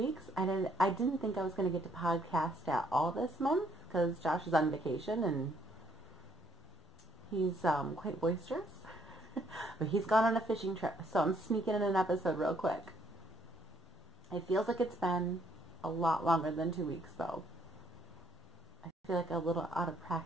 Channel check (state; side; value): normal; both; correlation 0.67